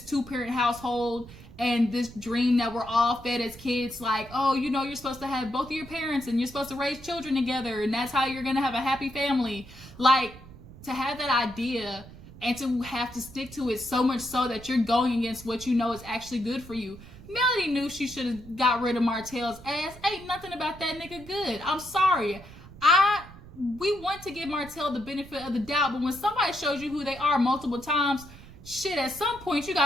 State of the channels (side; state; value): right; noise; rumble, 18 dB below the sound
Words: two-parent household, and this dream that we're all fed as kids, like, oh, you're supposed to have both of your parents and you're supposed to raise children together and that's how you're going to have a happy family. Like, to have that idea and to have to stick to it so much so that you're going against what you know is actually good for you. Melody knew she should have got rid of Martell's ass. Ain't nothing about that nigga good. I'm sorry. We want to give Martell the benefit of the doubt, but when somebody shows you who they are multiple times, shit, at some point you